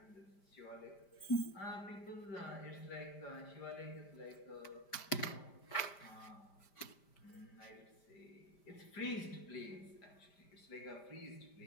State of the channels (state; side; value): late; right; 5.0 ms